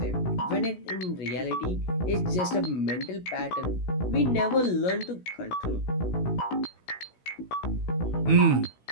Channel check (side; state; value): right; late; 17 ms